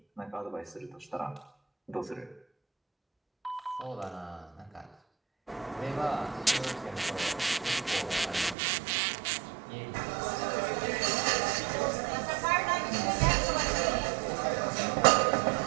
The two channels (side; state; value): left; drops out; at 8.6 s